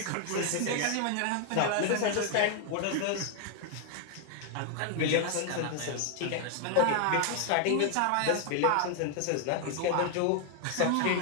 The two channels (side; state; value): both; different; correlation 0.00